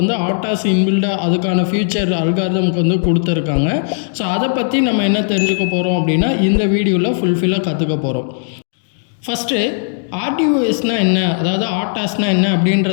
ஆட்டாஸ் இன்பில்டாக அதுக்கான ஃபியூச்சர் அல்காரிதம்க்கு வந்து கொடுத்துருக்காங்க. ஸோ அதை பற்றி நம்ம என்ன தெரிஞ்சுக்க போகிறோம் அப்படின்னா இந்த வீடியோவில் ஃபுல்ஃபில்லாக கற்றுக்க போகிறோம். ஃபஸ்ட்டு ஆர்டிஓஎஸ்னால் என்ன, அதாவது ஆட்டாஸ்னால் என்ன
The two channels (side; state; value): right; silent; digital silence